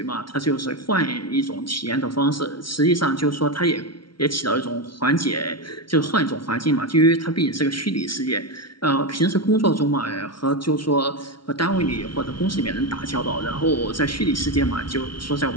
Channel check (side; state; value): right; late; 0.74 ms